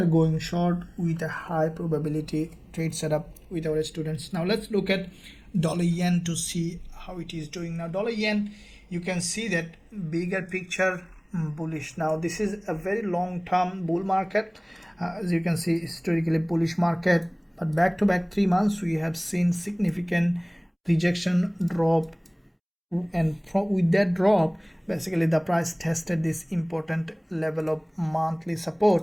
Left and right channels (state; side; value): identical; both; correlation 1.00